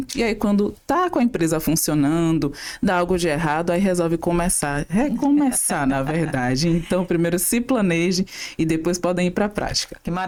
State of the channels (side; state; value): both; identical; correlation 1.00